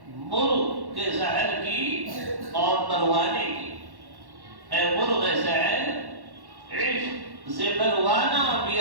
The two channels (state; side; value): late; left; 1.1 ms